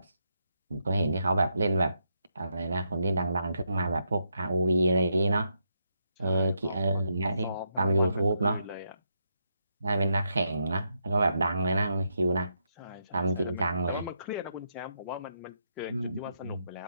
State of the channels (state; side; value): inverted; both; correlation -0.80